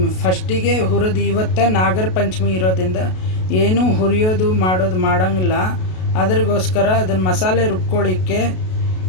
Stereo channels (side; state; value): right; late; 32 ms